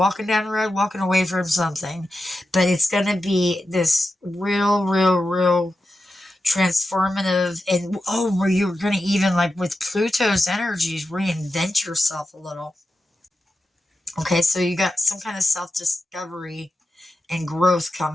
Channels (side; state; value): both; normal; correlation 0.90